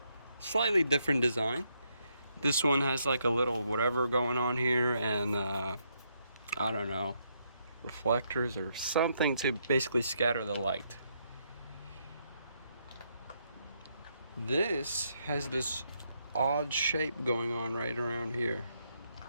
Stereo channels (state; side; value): inverted; both; correlation -0.76